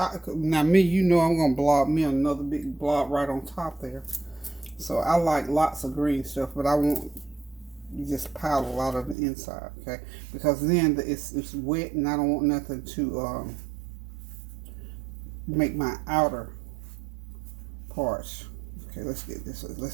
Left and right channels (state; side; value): drops out; left; at 9.2 s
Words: now me, you know I'm going to blob me another big blob right on top there. So I like lots of green stuff, but I won't just pile a lot of the inside, okay? Because then it's wet and I don't want nothing to make my outer parts. Okay, let's get this.